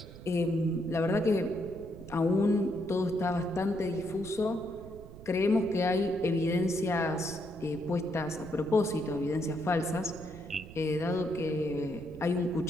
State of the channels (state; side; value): noise; right; rumble, 16 dB below the sound